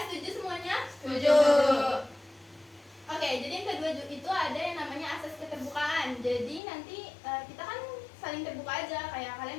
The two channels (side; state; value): right; drops out; at 6.6 s